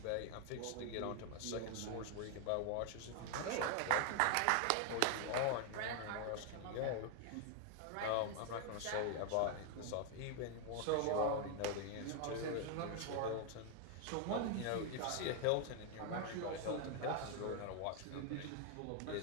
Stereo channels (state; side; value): different; both; correlation 0.01